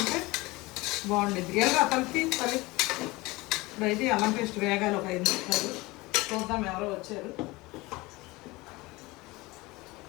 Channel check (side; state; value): right; quieter; 22.0 dB